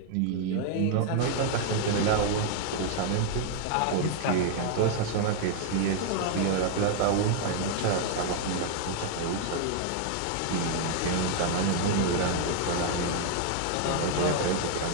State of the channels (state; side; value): different; both; correlation 0.00